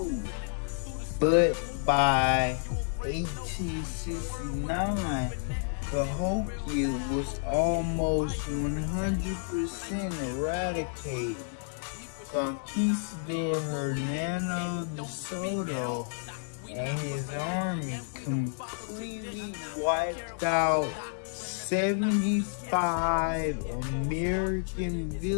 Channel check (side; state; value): right; silent; digital silence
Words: But by 1869, Cahokia was almost 100% eradicated. Conquistador Hernando de Soto and his army completely wiped out 75 American